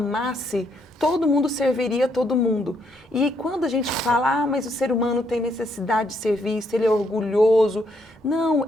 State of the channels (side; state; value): both; normal; correlation 0.74